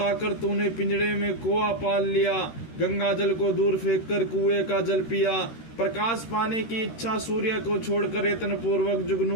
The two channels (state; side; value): late; right; 13 ms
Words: तूने पिंजड़े में कोआ पाल लिया, गंगा जल को दूर फेंककर कुएं का जल पिया, प्रकाश पाने की इच्छा सूर्य को छोड़कर यत्न पूर्वक